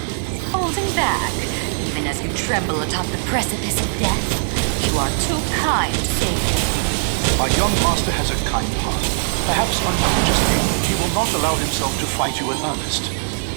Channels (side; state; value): left; silent; digital silence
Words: Holding back, even as you tremble atop the precipice of death. You are too kind, Savior. My young master has a kind heart. Perhaps unconsciously, he will not allow himself to fight you in earnest.